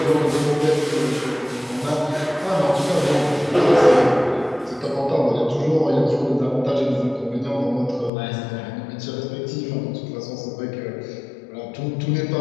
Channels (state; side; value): drops out; right; at 8.1 s